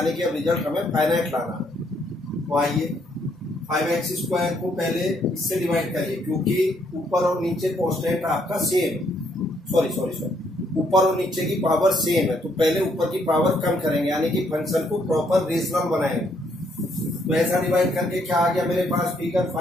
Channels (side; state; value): both; normal; correlation 0.71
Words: कि अब रिजल्ट हमें फाइनाइट लाना है। तो आइए 5x² को पहले इससे डिवाइड करिए, क्योंकि ऊपर और नीचे कांस्टेंट आपका सेम, सॉरी ऊपर और नीचे की पावर सेम है, तो पहले ऊपर की पावर कम करेंगे, यानी कि फंक्शन को प्रॉपर रेशनल बनाएंगे। तो ऐसा डिवाइड करके क्या आ गया मेरे पास figure